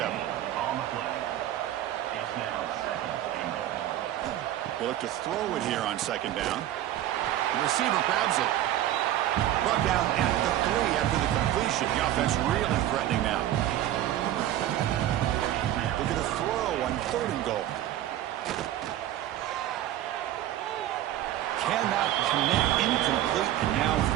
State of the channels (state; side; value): quieter; left; 12.8 dB